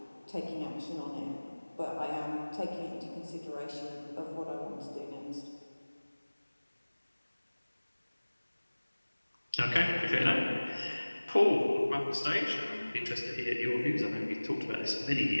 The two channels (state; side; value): inverted; both; correlation -1.00